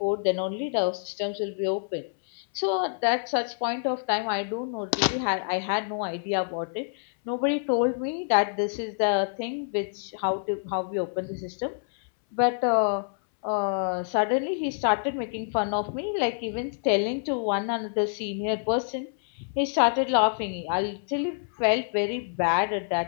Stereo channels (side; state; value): right; silent; 60 dB below the other